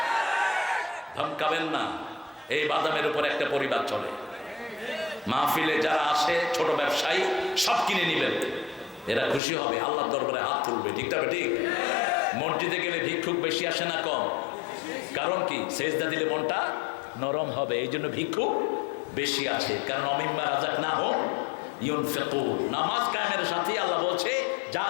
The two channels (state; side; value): drops out; right; at 9.4 s